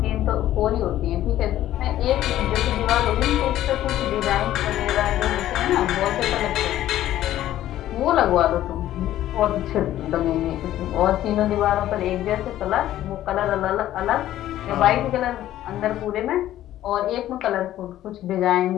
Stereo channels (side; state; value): right; quieter; 13.2 dB